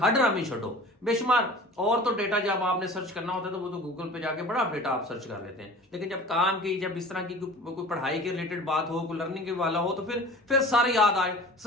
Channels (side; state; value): both; normal; correlation 0.41